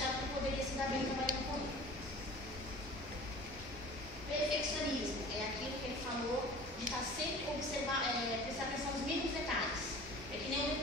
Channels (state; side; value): normal; both; correlation 0.42